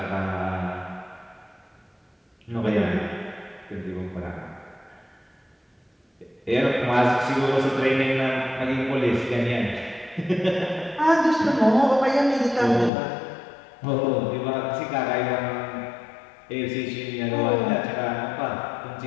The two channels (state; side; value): drops out; right; at 12.9 s